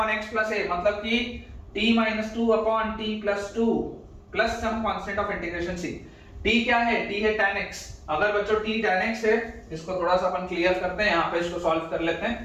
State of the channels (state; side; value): identical; both; correlation 1.00